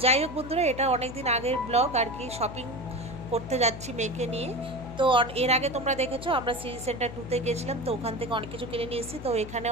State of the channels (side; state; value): left; noise; hum, 11 dB below the sound